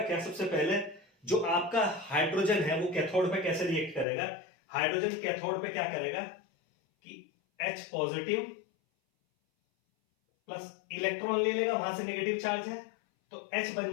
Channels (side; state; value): right; drops out; at 4.0 s